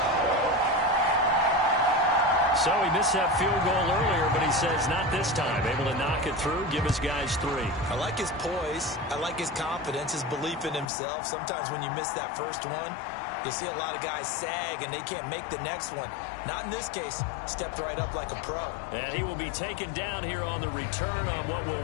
So he missed that field goal earlier, but he says not this time. Able to knock it through, give his guys 3. I like his poise. I like his confidence, his belief in himself. Sometimes when you miss that first one, you see a lot of guys sag and they can't make the next one. Not in this case. Stepped right up like a pro. And he will be taken down here on the return on what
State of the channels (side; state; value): right; drops out; at 10.9 s